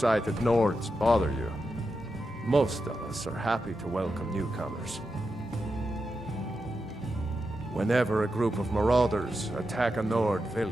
Nords bother you. Most of us are happy to welcome newcomers. Whenever a group of marauders attack a Nord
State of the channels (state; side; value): normal; both; correlation 0.88